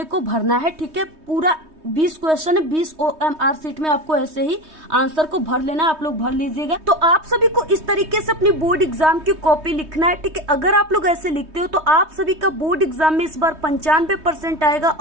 को भरना है। ठीक है, पूरा 20 क्वेश्चन है, 20 OMR शीट में आपको ऐसे ही आंसर को भर लेना है, आप लोग भर लीजिएगा। तो आप सभी को इस तरीके से अपनी बोर्ड एग्जाम की कॉपी लिखना है। ठीक है, अगर आप लोग ऐसे लिखते हो तो आप सभी का बोर्ड एग्जाम में इस बार 95% आएगा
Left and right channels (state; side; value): late; left; 3.2 ms